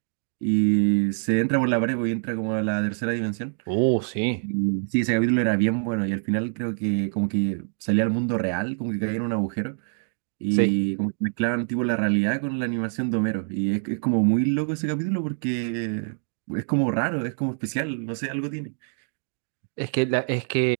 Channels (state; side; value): silent; left; 62 dB below the other